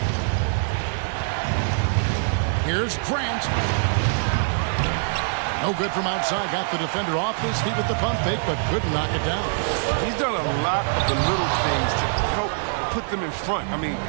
Here's Grant. No good from outside. Got the defender off his feet with the pump fake, but couldn't knock it down. He's done a lot of the little things to help put them in front. I mean,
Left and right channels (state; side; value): silent; left; digital silence